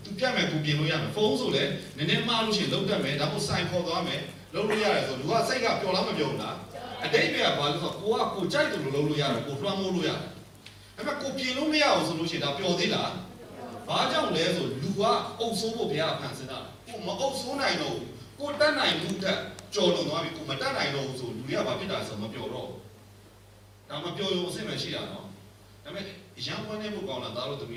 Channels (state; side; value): identical; both; correlation 1.00